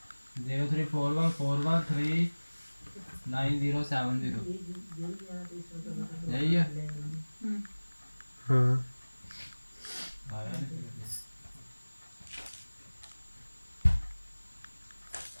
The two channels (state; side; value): inverted; both; correlation -1.00